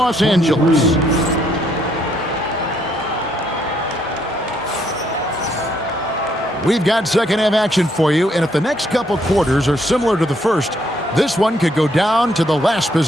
Angeles. We've got second half action for you, and if the next couple quarters are similar to the first, this one could go down to the last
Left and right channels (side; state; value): both; normal; correlation 0.71